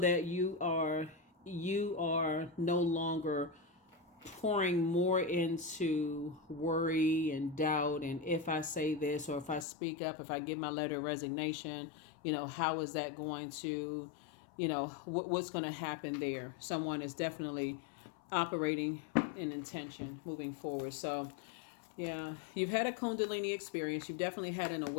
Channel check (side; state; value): right; drops out; at 9.7 s